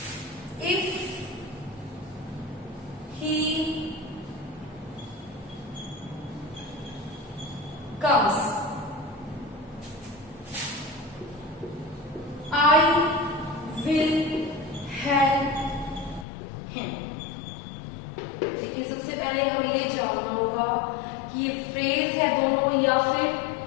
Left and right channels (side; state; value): right; drops out; at 16.2 s